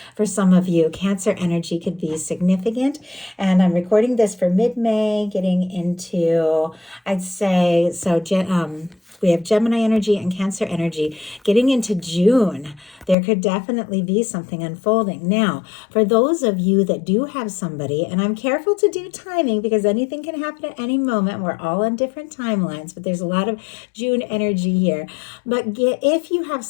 for some of you. Cancer energy could be significant. And I'm recording this for mid-May, getting into, I'd say, so we have Gemini energy and Cancer energy getting into June. There could definitely be something unfolding. Now, for those of you that do have somebody, and I'm careful to do timing because anything can happen at any moment. We're all on different timelines, but there's a lot of June energy here. But if you have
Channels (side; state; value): right; drops out; at 13.2 s